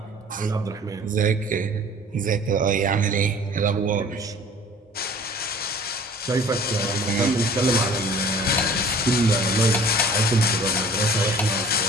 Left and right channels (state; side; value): normal; both; correlation 0.48